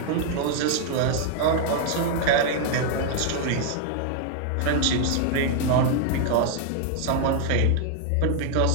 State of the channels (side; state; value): both; different; correlation 0.00